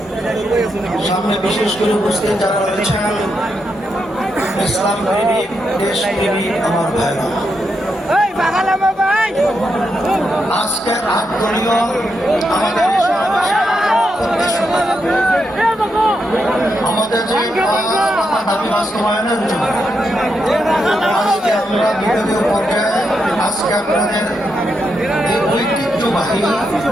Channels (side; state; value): both; normal; correlation 0.83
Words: সামনে বিশেষ করে উপস্থিত যারা রয়েছেন, ইসলাম প্রেমিক, দেশ প্রেমিক আমার ভাইরা, আজকের আত্মীয় আমাদের আমাদের যে দাবি বাস্তবায়নের জন্য আজকে আমরা বিভাগীয় পর্যায়ে আজকে আপনাদের এই ঐতিহ্যবাহী